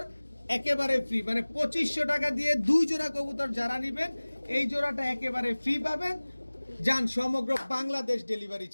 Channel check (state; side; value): inverted; both; correlation -1.00